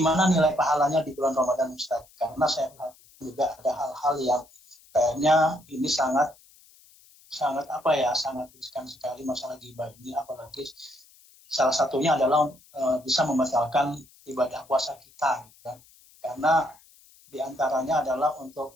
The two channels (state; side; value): noise; left; hiss, 27 dB below the sound